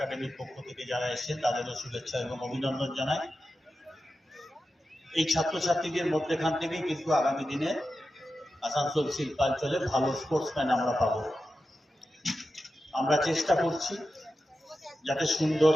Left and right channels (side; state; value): both; normal; correlation 0.91